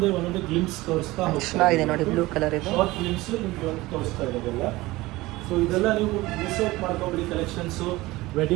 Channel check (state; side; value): quieter; left; 19.6 dB